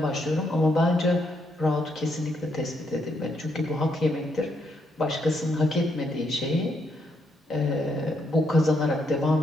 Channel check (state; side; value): normal; both; correlation 0.76